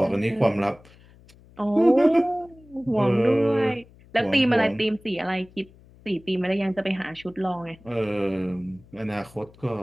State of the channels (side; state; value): left; noise; hum, 25 dB below the sound